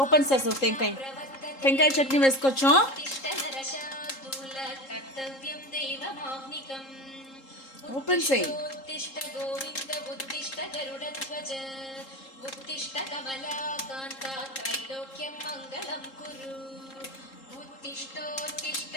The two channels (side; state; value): right; late; 3.7 ms